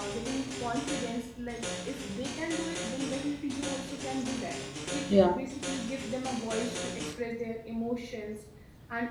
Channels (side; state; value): both; identical; correlation 1.00